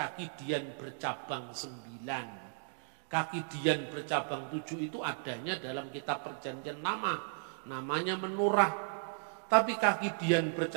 dian bercabang 9. Kaki dian bercabang 7 itu adanya dalam kitab Perjanjian Lama, namanya menorah. Tapi kaki dian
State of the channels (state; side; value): silent; left; digital silence